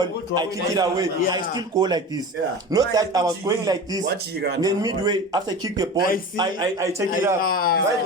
I kick it away, I still go like this. Not that I was going like this, then midway after I kick the ball, I take it up.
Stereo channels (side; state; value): both; normal; correlation 0.32